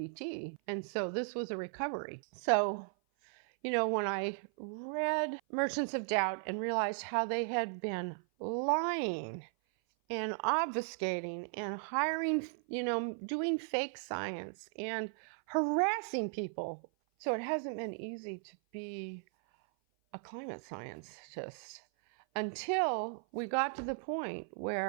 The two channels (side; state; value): left; silent; 53 dB below the other